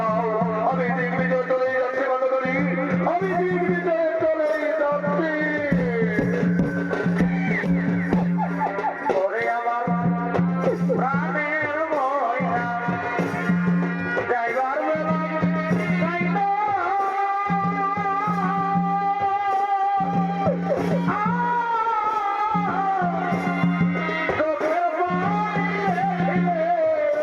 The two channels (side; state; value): both; identical; correlation 1.00